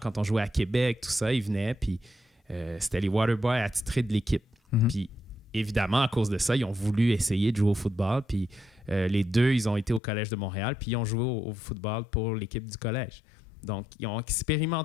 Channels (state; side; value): drops out; right; at 10.0 s